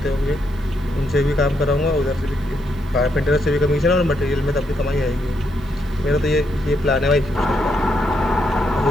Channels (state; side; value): noise; right; hiss, 29 dB below the sound